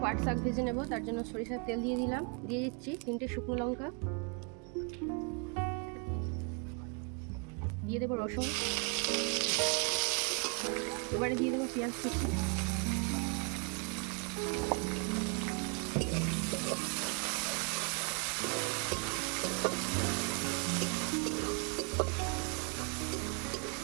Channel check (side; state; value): left; quieter; 34.8 dB